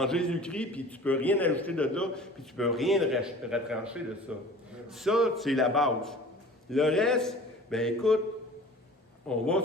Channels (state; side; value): normal; both; correlation 0.43